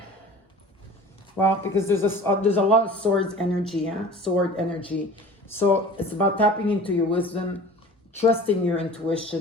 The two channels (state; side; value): normal; both; correlation 0.42